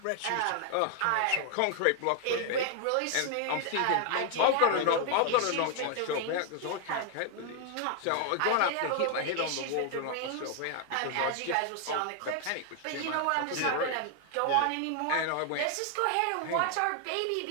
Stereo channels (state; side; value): different; both; correlation 0.00